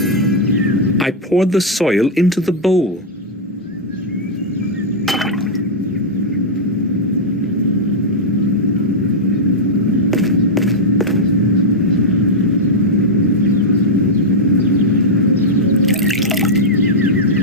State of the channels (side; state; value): both; normal; correlation -0.05